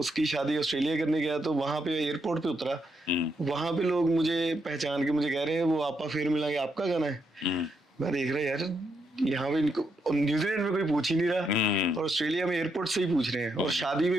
शादी ऑस्ट्रेलिया करने गया, तो वहां पे एयरपोर्ट पे उतरा, वहां पे लोग मुझे पहचान के मुझे कह रहे हैं वो आपा फिर मिलांगे, आपका गाना है। मैं देख रहा यार, यहाँ पे इनको न्यूजीलैंड में कोई पूछ ही नहीं रहा, और ऑस्ट्रेलिया में एयरपोर्ट से ही पूछ रहे हैं, और शादी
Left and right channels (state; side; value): normal; both; correlation 0.79